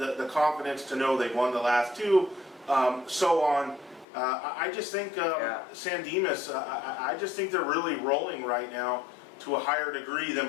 confidence to know they've won the last two, so on. I just think Yeah. San Dimas, I just think they're really rolling right now to a higher degree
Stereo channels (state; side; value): drops out; right; at 4.0 s